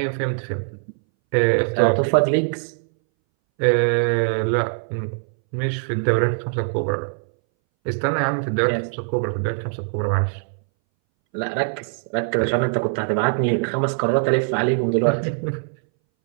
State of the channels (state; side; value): silent; left; 62 dB below the other